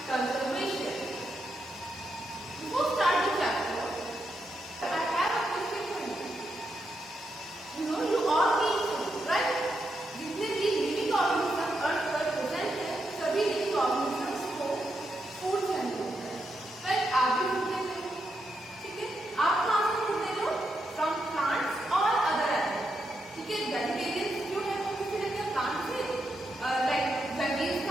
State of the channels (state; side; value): normal; both; correlation 0.83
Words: conservation. Before start the chapter, I have a question for you. You all need food, right? जितने भी living organisms अर्थ पर present हैं, सभी living organisms को food चाहिए होता है. Right? आप भी food लेते हो, ठीक है? आप कहाँ से food लेते हो? From plants or other animals. ठीक है? Vegetarians जो है वो किससे लेते हैं? Plants से. Like veggies